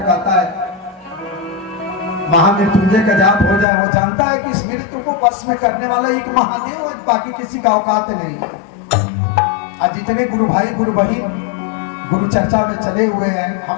कहता है महामृत्युंजय का जाप हो जाए। वो जानता है कि इस मृत्यु को वश में करने वाला एक महादेव है, बाकी किसी का औकात नहीं। आज जितने गुरु भाई गुरु बहन गुरु चर्चा में चले हुए हैं,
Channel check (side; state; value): right; drops out; at 3.7 s